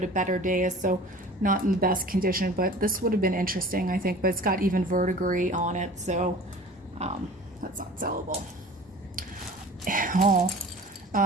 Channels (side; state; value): both; normal; correlation 0.42